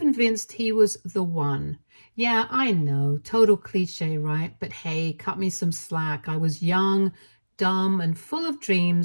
he was the one. Yeah, I know, total cliche, right? But hey, cut me some slack. I was young, dumb, and full of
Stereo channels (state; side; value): inverted; both; correlation -1.00